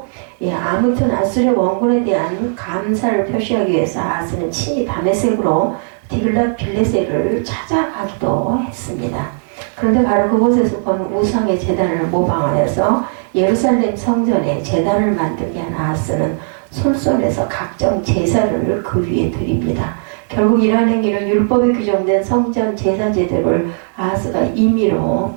아무튼 아수르 원군에 대한 감사를 표시하기 위해서 아하스는 친히 다메섹으로 디글랏 빌레셀을 찾아가기도 했습니다. 그런데 바로 그곳에서 본 우상의 제단을 모방하여서 예루살렘 성전에 제단을 만들게 한 아하스는 솔솔해서 각종 제사를 그 위에 드립니다. 결국 이러한 행위는 율법에 규정된 성전 제사 제도를 아하스가 임의로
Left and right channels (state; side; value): silent; left; digital silence